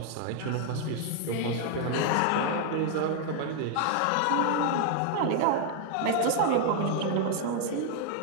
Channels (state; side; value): different; both; correlation 0.00